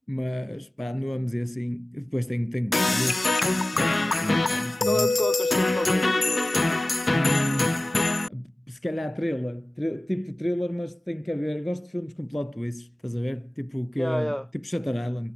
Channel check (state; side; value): normal; both; correlation 0.97